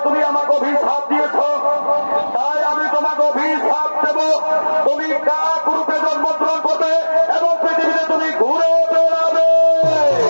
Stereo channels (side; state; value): both; inverted; correlation -1.00